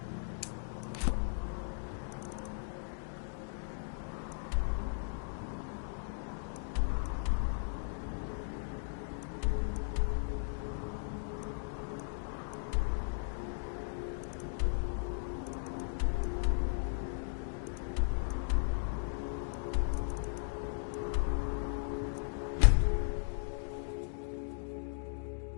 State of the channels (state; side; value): silent; right; digital silence